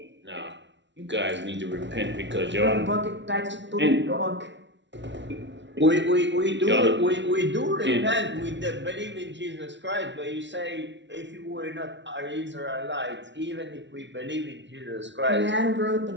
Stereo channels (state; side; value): late; left; 0.52 ms